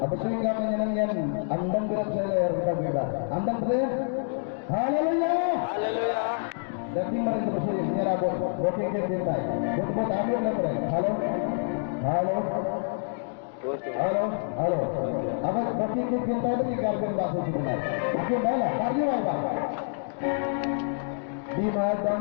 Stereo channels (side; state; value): right; silent; digital silence